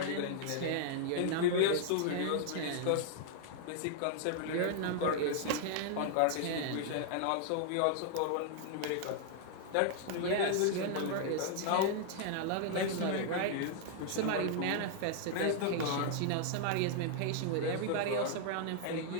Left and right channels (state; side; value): different; both; correlation 0.00